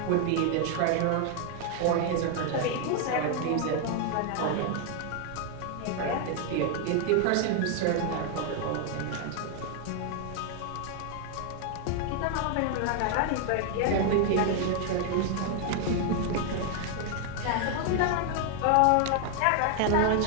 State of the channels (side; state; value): both; different; correlation 0.00